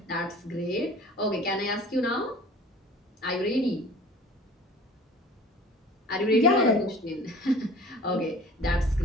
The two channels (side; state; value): both; normal; correlation 0.45